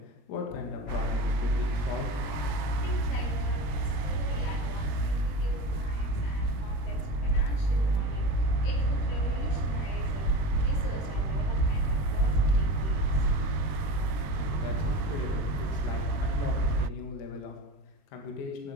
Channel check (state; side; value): late; right; 20 ms